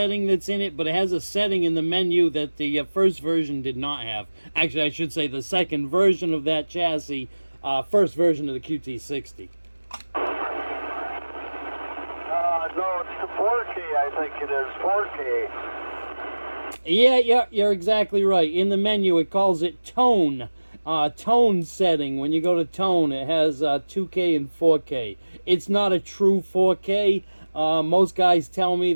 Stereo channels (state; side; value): inverted; both; correlation -1.00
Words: that's in it, but it has a setting in the menu that the first version did not have. Actually, I should say the second version of that chassis, first version of the QT60. No, it's the 4K, I think it is. 4K. Yeah, you're exactly right. In the menu, it calls it tone. Tone setting. When you go to tone, it has 2K and 4K. It's not a true 4K. Most guys tell me